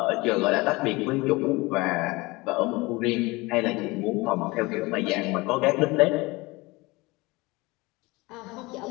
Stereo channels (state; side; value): quieter; right; 23.1 dB